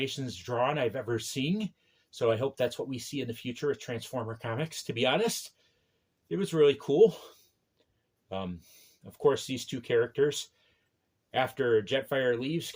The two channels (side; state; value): both; identical; correlation 1.00